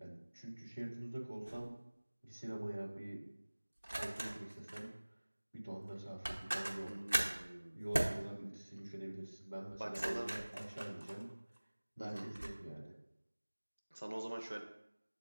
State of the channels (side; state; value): both; inverted; correlation -1.00